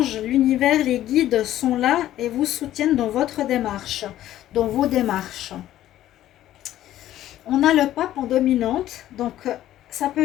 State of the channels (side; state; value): right; quieter; 13.2 dB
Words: l'univers, les guides sont là et vous soutiennent dans votre démarche, dans vos démarches. On a le pape en dominante, donc ça